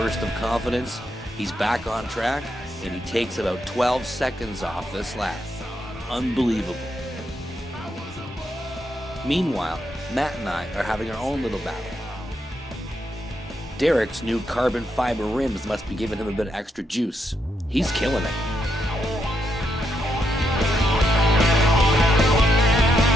of confidence, he's back on track, and he takes about 12 seconds off this lap. Unbelievable. Meanwhile, Matt and I are having our own little battle. Derek's new carbon fiber rims must be giving him a bit of extra juice. He's killing it.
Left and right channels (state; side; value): normal; both; correlation 0.80